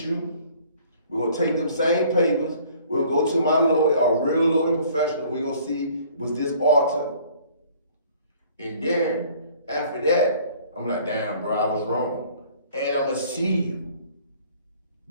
you. We're gonna take them same papers. We'll go to my lawyer, a real lawyer professional. We're gonna see, was this alter? And then, after that, I'm like, damn, bro, I was wrong. And I'm gonna see you.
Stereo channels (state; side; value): inverted; both; correlation -0.55